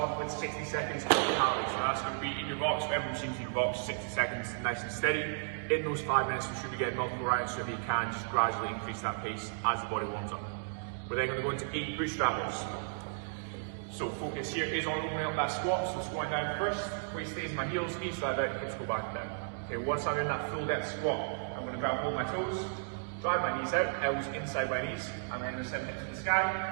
off with 60 seconds of calories, so that's going to be in your box, whatever machine's in your box, 60 seconds, nice and steady. In those 5 minutes, we should be getting multiple rounds, so if you can, just gradually increase that pace as the body warms up. We're then going to go into 8 bootstrap lifts. So focus here is on opening up that squat, so squatting down first, weight stays in my heels, knees slide out, hips go back and down. Okay, once I'm in that full depth squat, I'm going to grab hold my toes, drive my knees out, elbows inside my knees, and then send hips to the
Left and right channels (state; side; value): silent; left; digital silence